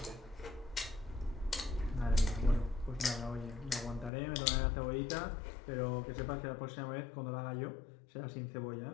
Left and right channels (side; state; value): right; drops out; at 4.1 s